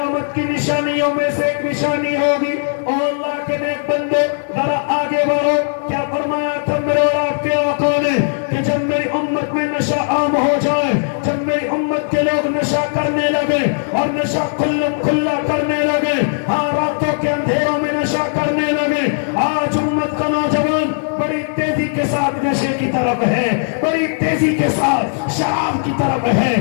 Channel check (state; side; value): silent; right; 68 dB below the other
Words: کی نشانیوں میں سے ایک نشانی ہوگی۔ اور اللہ کے نیک بندے ذرا آگے بڑھو، کیا فرمایا تھا میرے اور آپ کے آقا نے کہ جب میری امت میں نشہ عام ہو جائے، جب میری امت کے لوگ نشہ کرنے لگے اور نشہ کھلم کھلا کرنے لگے، ہاں راتوں کے اندھیروں میں نشہ کرنے لگے، آج امت کا نوجوان بڑی تیزی کے ساتھ نشے کی طرف ہے، بڑی تیزی کے ساتھ شراب کی طرف ہے،